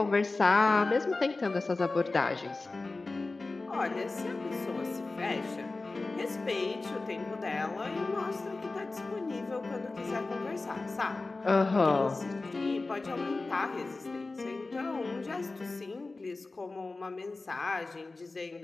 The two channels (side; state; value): right; quieter; 3.5 dB